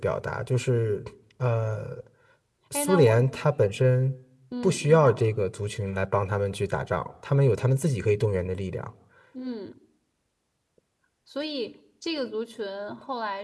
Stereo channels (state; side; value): identical; both; correlation 1.00